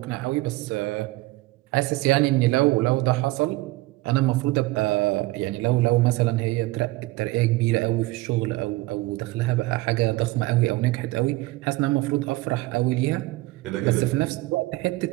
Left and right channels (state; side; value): quieter; left; 19.9 dB